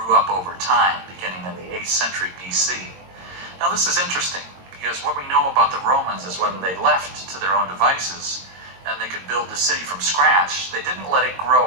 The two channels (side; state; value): left; late; 22 ms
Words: up over time, beginning in the 8th century BC. Now this is interesting, because what we know about the Romans is when they left to their own devices, and they could build the city from scratch, they didn't let it